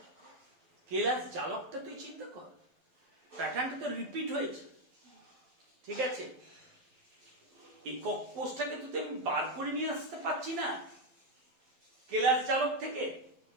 কেলাস জালকটা তুই চিন্তা কর, প্যাটার্নটা তো রিপিট হয়েছে, ঠিক আছে? একক কোষটাকে তো আমি বার করে নিয়ে আসতে পারছি না কেলাস জালক থেকে,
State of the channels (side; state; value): left; late; 12 ms